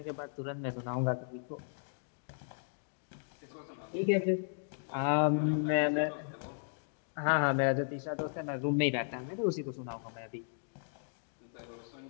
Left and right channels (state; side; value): silent; right; digital silence